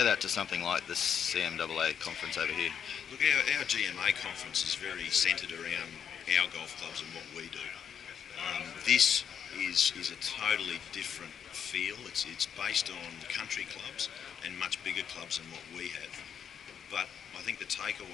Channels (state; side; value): quieter; right; 8.0 dB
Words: that to something like the CMAA conference over here? Look, our GMA conference is very centred around our golf clubs and what we do. This is a totally different feel. It's based on country clubs and much bigger clubs than what we have. But I think the